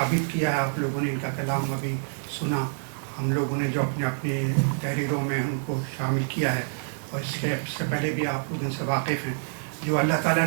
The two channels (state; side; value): silent; left; 60 dB below the other